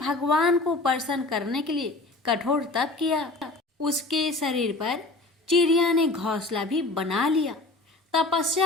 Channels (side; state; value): right; quieter; 3.1 dB